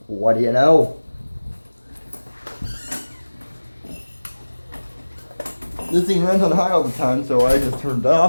What do you know? This thing runs on high all the time, so I just turned it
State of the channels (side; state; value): both; inverted; correlation -1.00